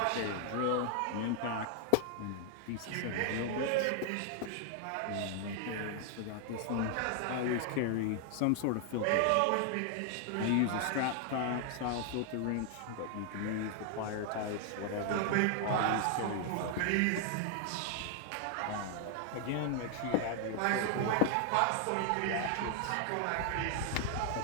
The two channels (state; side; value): different; both; correlation 0.00